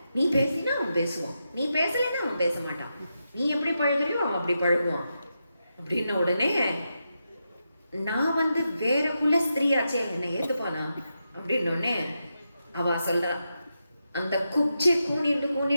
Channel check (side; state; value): both; inverted; correlation -0.87